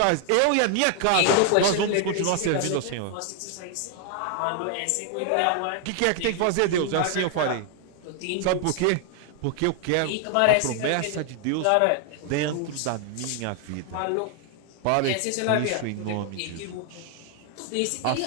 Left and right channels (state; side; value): different; both; correlation 0.00